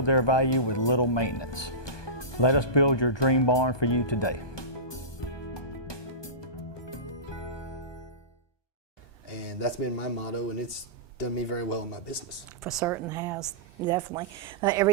their value with little maintenance. Let us build your dream barn for you today. And that's been my motto, and it's done me very well in my business. For certain has, definitely.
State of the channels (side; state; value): right; late; 1.2 ms